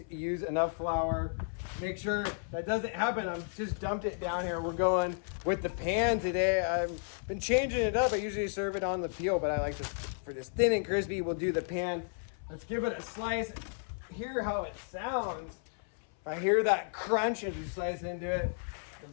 use enough flour. Make sure that doesn't happen. I've just dumped it down here. We're going with the pan today. I've been changing it up. I usually serve it on the peel, but I like this for this thin and crispy. We'll do the pan. Let's give it a slice. Hear how it sounds. If I hear that crunch as we slice into it, the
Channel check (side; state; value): right; silent; 56 dB below the other